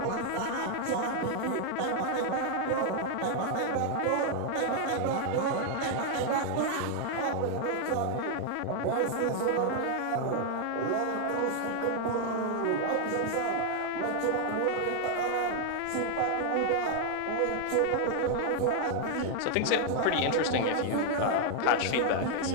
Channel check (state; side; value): different; both; correlation 0.00